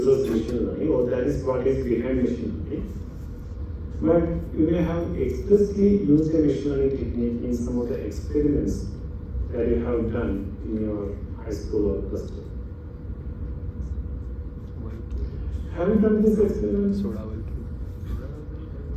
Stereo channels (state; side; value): identical; both; correlation 1.00